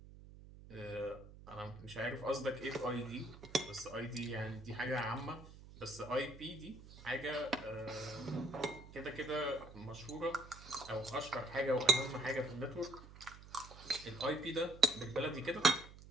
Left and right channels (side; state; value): right; noise; hum, 17 dB below the sound